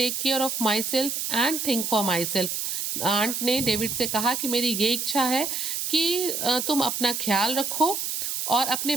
care of myself and think for myself. Aunt ने डेविड से कहा कि मेरी ये इच्छा है कि तुम अपना ख्याल रखो और अपने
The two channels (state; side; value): noise; right; hiss, 2 dB below the sound